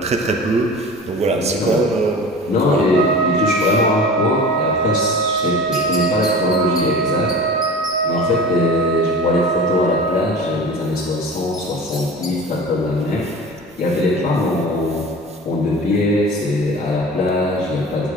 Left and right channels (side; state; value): both; normal; correlation 0.37